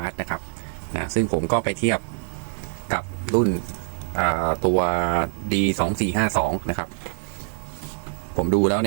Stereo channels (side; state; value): left; silent; 62 dB below the other